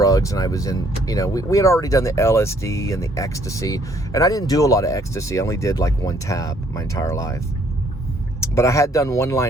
and I was in, you know, we had already done the LSD and the ecstasy. And I didn't do a lot of ecstasy. I only did like 1 tab my entire life. But I had done 1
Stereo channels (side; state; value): both; normal; correlation 0.65